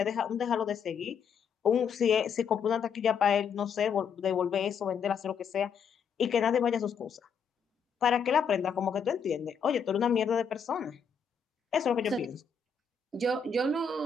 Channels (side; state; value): right; quieter; 6.4 dB